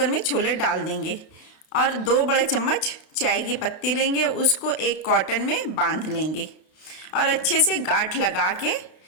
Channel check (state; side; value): late; right; 32 ms